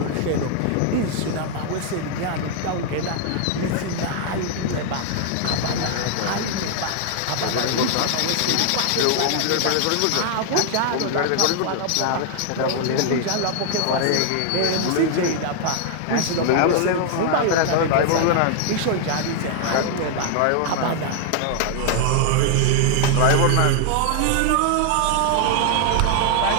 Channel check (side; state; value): both; different; correlation 0.00